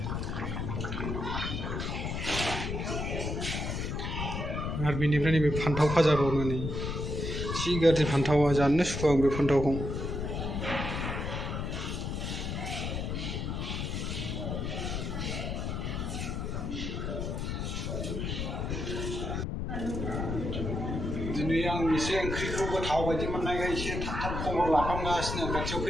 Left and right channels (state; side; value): noise; left; rumble, 3 dB below the sound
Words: आरो बेनिफ्राय नैबे फान्थाव फाजा बावनो नै जि गाज्रि फान्थावा जानोनो सुखुआ आं बे फान्थावखौ दिनै आं एसे ओंख्रिखौ गोथाव बायदि मोननायखाय एसे थाब थाब खबर लाखांगासिनो खाथियाव